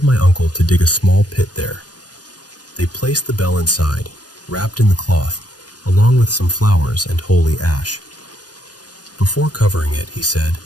my uncle to dig a small pit there. They placed the bell inside, wrapped in the cloth, along with some flowers and holy ash. Before covering it, he said,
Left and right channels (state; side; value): late; right; 0.69 ms